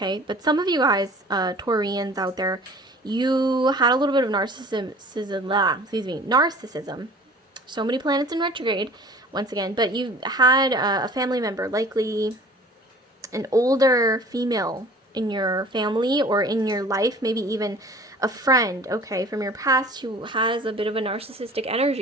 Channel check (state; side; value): normal; both; correlation 0.46